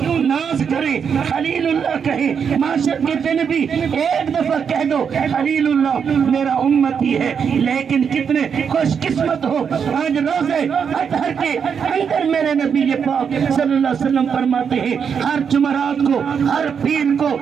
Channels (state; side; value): quieter; left; 6.9 dB